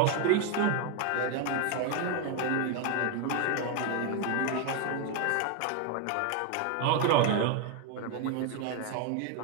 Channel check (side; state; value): both; different; correlation 0.01